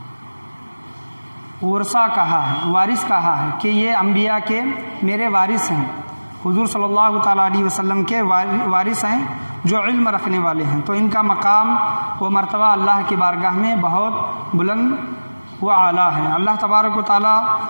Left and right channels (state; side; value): inverted; both; correlation -1.00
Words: ورثہ کہا ہے، وارث کہا ہے کہ یہ انبیاء کے میرے وارث ہیں، حضور صلی اللہ تعالیٰ علیہ وسلم کے وارث ہیں جو علم رکھنے والے ہیں، تو ان کا مقام و مرتبہ اللہ کی بارگاہ میں بہت بلند و اعلیٰ ہے۔ اللہ تبارک و تعالیٰ